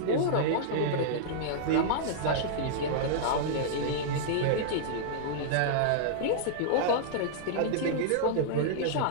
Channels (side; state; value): both; different; correlation -0.02